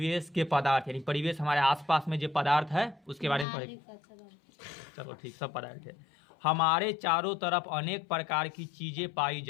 के पदार्थ, यानी परिवेश हमारे आसपास में जो पदार्थ है उसके बारे में पढ़ेंगे। चलो ठीक, सब पदार्थ है। हमारे चारों तरफ अनेक प्रकार की चीजें पाई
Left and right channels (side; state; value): right; drops out; at 3.5 s